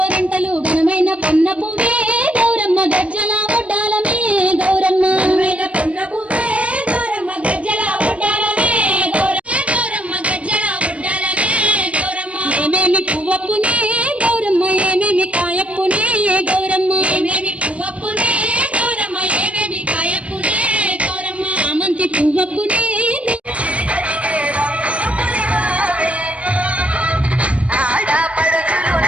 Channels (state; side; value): late; left; 0.063 ms